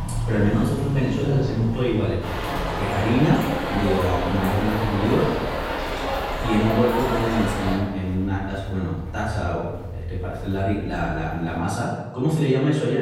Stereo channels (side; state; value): both; identical; correlation 1.00